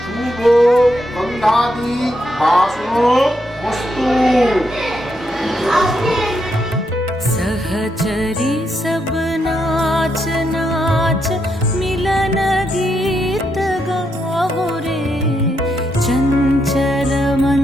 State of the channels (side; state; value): both; normal; correlation 0.80